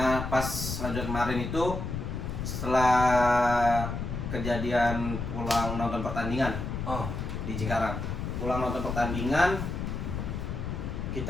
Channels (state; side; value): noise; left; rumble, 4 dB below the sound